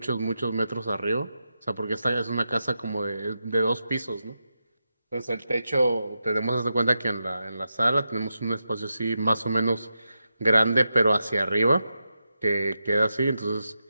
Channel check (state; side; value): inverted; both; correlation -0.88